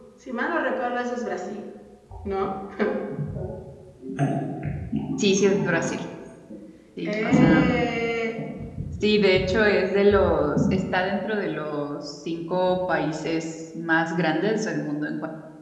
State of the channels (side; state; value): both; identical; correlation 1.00